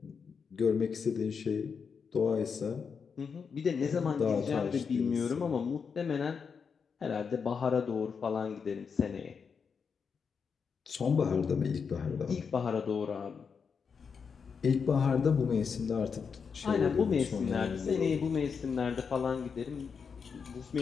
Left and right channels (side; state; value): right; quieter; 6.0 dB